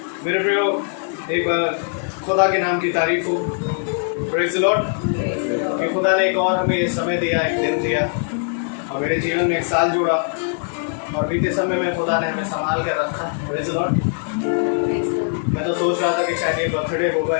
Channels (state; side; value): silent; right; 58 dB below the other